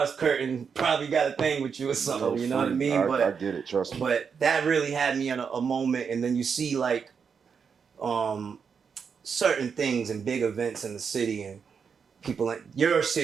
curtain probably got a thing with you or something, you know what I mean? I get it, trust me. But that really had me in a moment, and then you see like certain things and big events in the city, and people like your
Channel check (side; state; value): left; quieter; 6.3 dB